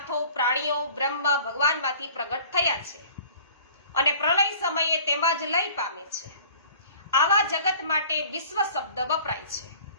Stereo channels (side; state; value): both; inverted; correlation -0.48